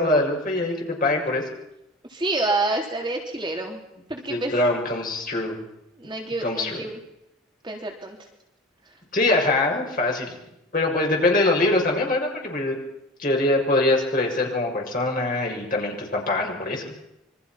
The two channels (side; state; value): both; normal; correlation 0.32